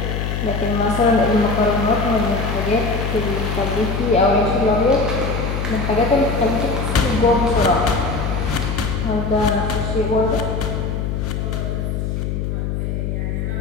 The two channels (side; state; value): left; noise; hum, 2 dB below the sound